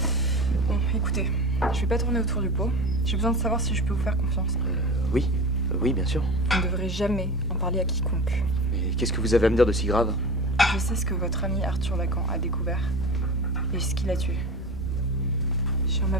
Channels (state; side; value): normal; both; correlation 0.31